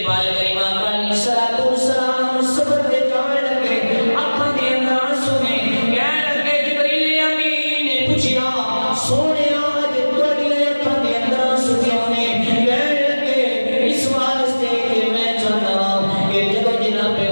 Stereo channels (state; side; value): inverted; both; correlation -1.00